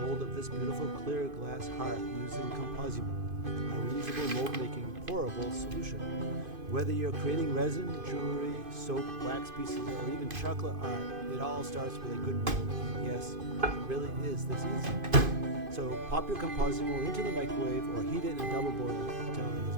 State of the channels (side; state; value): left; late; 2.5 ms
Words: of this beautiful clear glass heart using ComposiMold, a reusable mold making pourable solution. Whether you're creating resin, jewelry, soap, wax pieces, or even chocolate art, it all starts with a good mold, and yes, it really is this easy. So pop your ComposiMold into the microwave or heat it in a double boiler until it